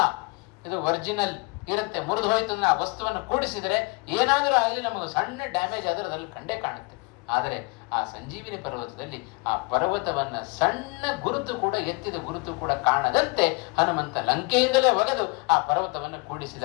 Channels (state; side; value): quieter; right; 28.5 dB